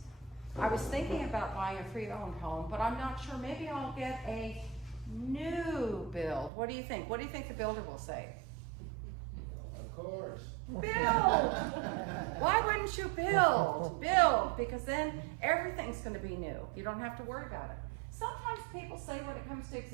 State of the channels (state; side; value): drops out; left; at 6.5 s